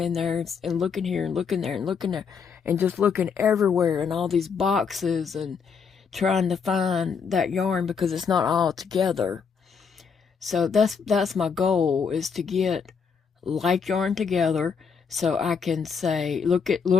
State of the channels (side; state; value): right; quieter; 6.1 dB